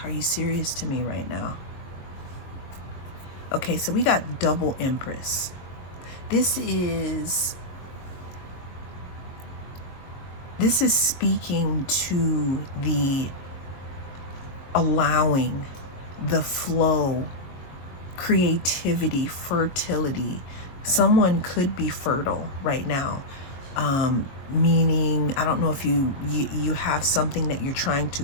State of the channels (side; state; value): right; late; 22 ms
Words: Are you serious to me right now? Okay, so we got double Empress. This is speaking to the allowing, the flow, creativity, fertility. Someone could be fertile right now, meaning, I don't know if you have something that you're trying to